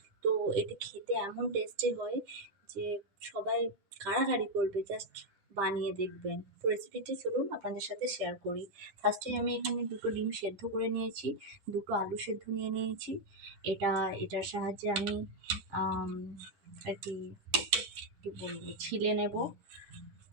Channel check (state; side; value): late; left; 10 ms